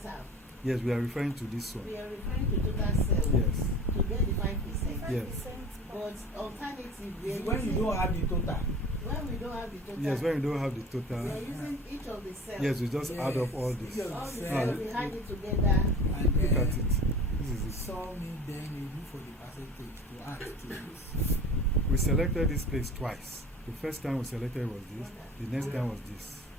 Yes, we are referring to this one. We are referring to total cells Yes. to get the 5%. Yes. But alternative, we are when you don't have the total. when we don't have the total. Yes, when we don't have the We total. are using each of the cells. Yes, we just add up all this. Yes. All the Now, cells, we add it together. And Look at then it. This is it. saw me, then you look for the percentage to add to this. We selected this place twice. The first time we selected was this. The next time was this.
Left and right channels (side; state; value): both; normal; correlation 0.39